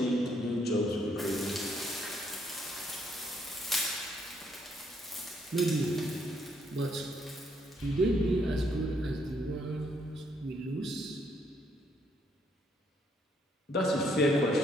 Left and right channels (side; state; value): both; normal; correlation 0.71